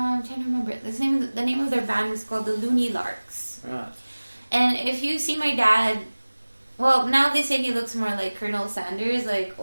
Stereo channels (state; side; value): inverted; both; correlation -1.00